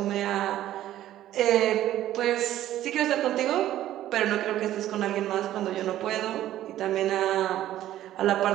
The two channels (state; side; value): quieter; left; 13.1 dB